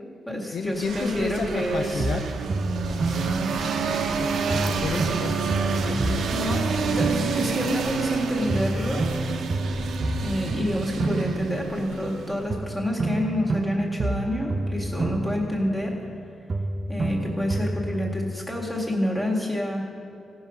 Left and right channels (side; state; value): both; normal; correlation 0.84